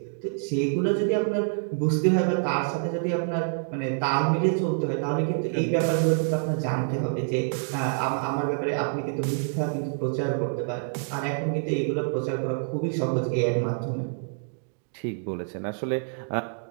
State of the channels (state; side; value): silent; left; digital silence